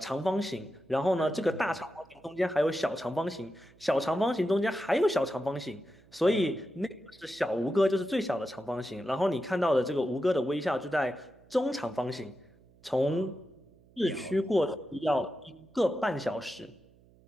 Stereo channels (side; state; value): right; noise; hum, 28 dB below the sound